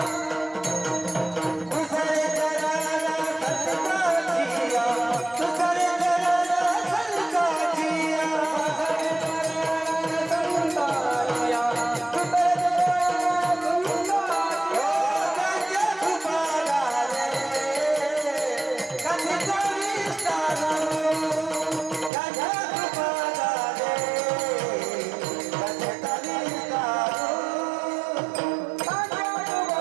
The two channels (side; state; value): left; drops out; at 22.1 s